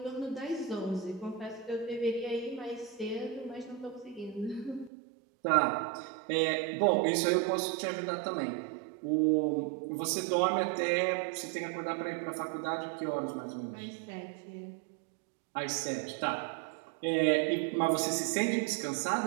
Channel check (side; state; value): left; drops out; at 4.9 s